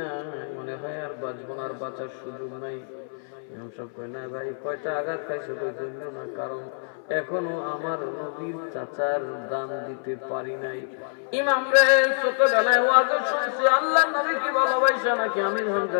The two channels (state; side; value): silent; right; 61 dB below the other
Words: মনে হয় আর বাঁচবো না, আর বাঁচার সুযোগ নাই। ইমাম সাহেব কয় না ভাই, কয়টা আঘাত খাইছে? কই না, কারণ এখনো আমার নবীর চাচার দান দিতে পারি নাই। ইমাম রে ছোটবেলায় ওয়াজ শুনছি আল্লাহর নবী কি ভালোবাসা নাকি আমির